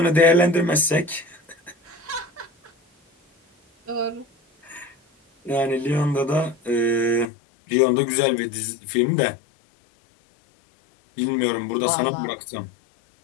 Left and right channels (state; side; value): drops out; right; at 7.2 s